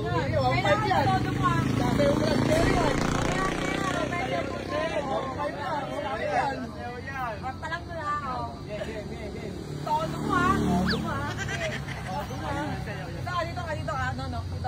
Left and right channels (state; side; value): identical; both; correlation 1.00